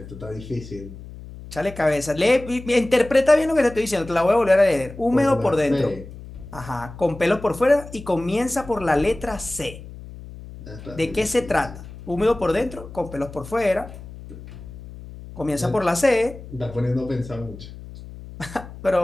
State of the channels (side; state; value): left; noise; hum, 15 dB below the sound